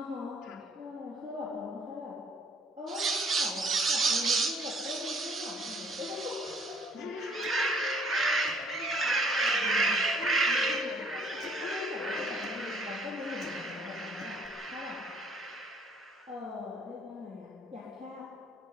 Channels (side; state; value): both; normal; correlation 0.59